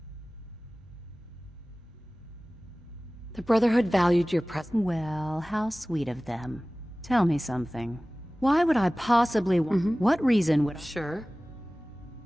The Brotherhood valued your presence. Well, how sweet of them. Tell me something. Why would I possibly want... What reason would I... Sure.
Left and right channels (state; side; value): normal; both; correlation 0.98